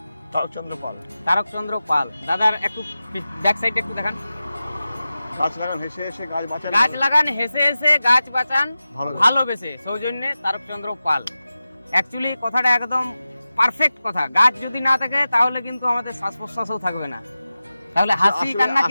তারকচন্দ্র পাল। তারকচন্দ্র পাল। দাদার একটু ব্যাক সাইডটা একটু দেখান। গাছ লাগান হেসে হেসে গাছ বাঁচান, গাছ লাগান হেসে হেসে গাছ বাঁচান ভালোবেসে, সৌজন্যে তারকচন্দ্র পাল। অ্যাকচুয়ালি কথাটা একদম পারফেক্ট কথা। গাছ যদি না থাকে তাহলে কিন্তু আমাদের শ্বাস প্রশ্বাসও থাকবে না, তাহলে হাসি কান্না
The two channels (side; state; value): both; inverted; correlation -0.94